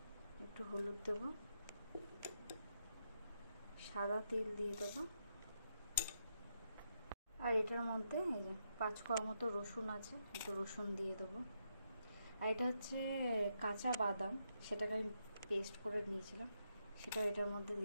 একটু হলুদ দেবো, সাদা তেল দিয়ে দেবো। আর এটার মধ্যে এই যে 5 কোয়া মতো রসুন আছে, একটু রসুন দিয়ে দেবো। আর এটা হচ্ছে কাঁচা বাদাম, সেটাকে আমি পেস্ট করে নিয়েছিলাম, সেটা এটার মধ্যে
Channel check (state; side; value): inverted; both; correlation -0.81